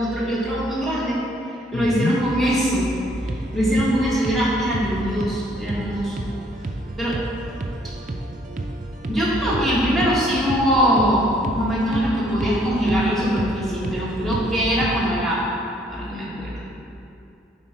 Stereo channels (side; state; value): both; normal; correlation 0.64